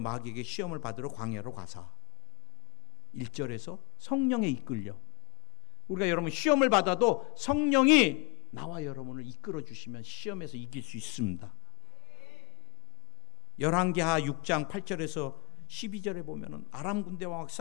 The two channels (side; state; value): right; quieter; 31.9 dB